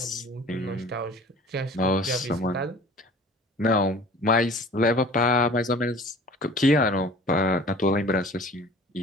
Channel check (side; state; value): both; normal; correlation 0.45